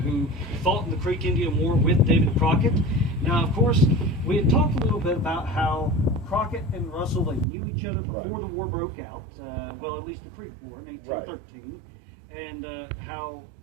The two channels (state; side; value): drops out; left; at 7.5 s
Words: who fought in the Creek Indian War with David Crockett. Now, of course, we had talked a little bit about how Crockett and Russell, they knew each other before the war broke out, well, at least the Creek War in 1813, and how